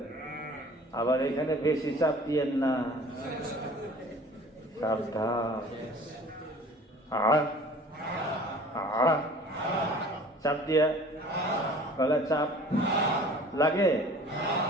আবার এখানে বেশি চাপ দিয়েন না, সাবধান। চাপ দিয়া গলায় চাপ লাগে,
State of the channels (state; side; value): normal; both; correlation 0.47